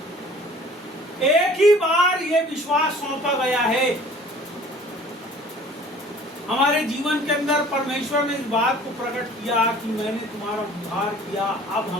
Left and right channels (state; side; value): normal; both; correlation 0.49